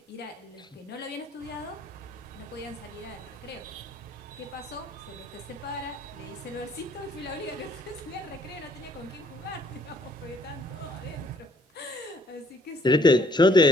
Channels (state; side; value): normal; both; correlation 0.63